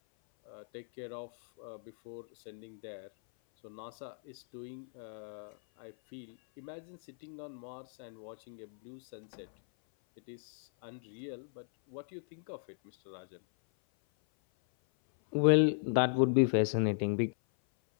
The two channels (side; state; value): right; silent; 54 dB below the other